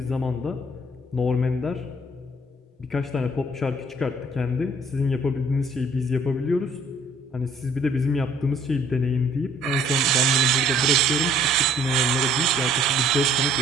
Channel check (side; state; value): both; normal; correlation 0.59